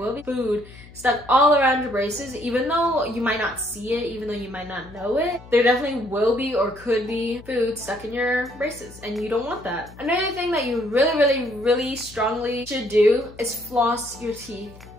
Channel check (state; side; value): noise; left; hum, 20 dB below the sound